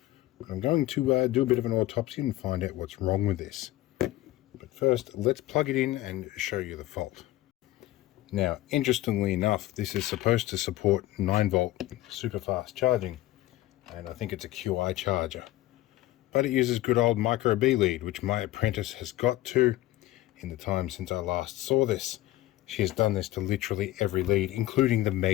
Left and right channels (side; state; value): right; quieter; 16.0 dB